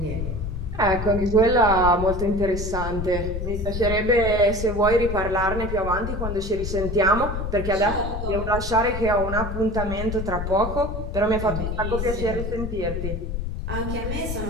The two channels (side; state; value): left; noise; rumble, 4 dB below the sound